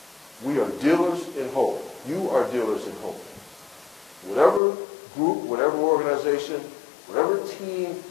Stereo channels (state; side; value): drops out; right; at 4.6 s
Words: We are dealers in hope. You are dealers in hope. Whatever group, whatever organization, whatever team